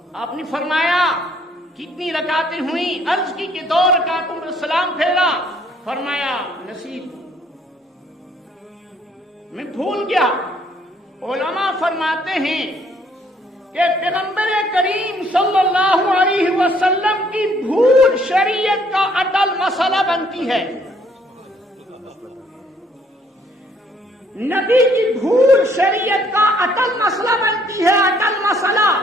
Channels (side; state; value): both; normal; correlation 0.64